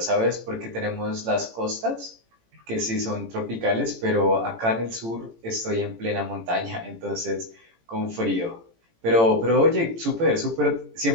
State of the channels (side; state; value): left; late; 18 ms